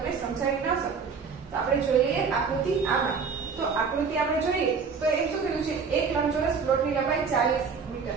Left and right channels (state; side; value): quieter; left; 5.5 dB